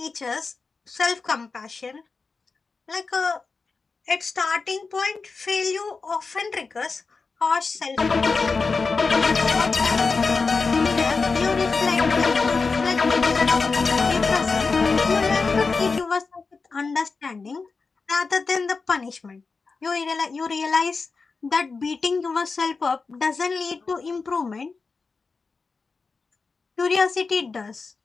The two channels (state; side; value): quieter; right; 4.4 dB